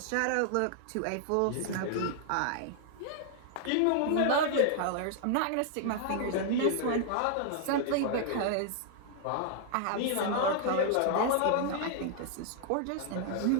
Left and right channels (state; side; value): different; both; correlation -0.01